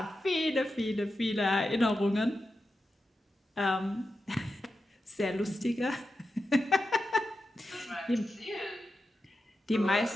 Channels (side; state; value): both; normal; correlation 0.90